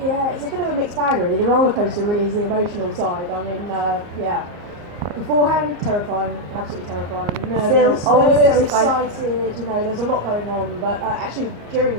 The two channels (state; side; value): late; left; 34 ms